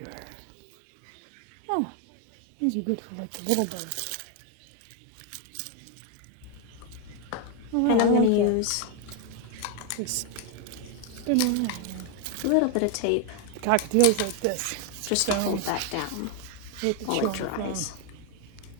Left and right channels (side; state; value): both; different; correlation 0.01